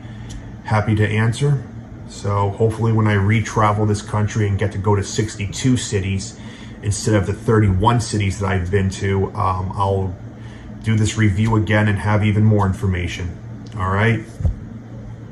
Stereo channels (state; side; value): identical; both; correlation 1.00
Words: happy to answer. So hopefully when I re-travel this country and get to go to 62 cities instead of the 31 cities that I've been to, I'll do this review again and have even more information. All right?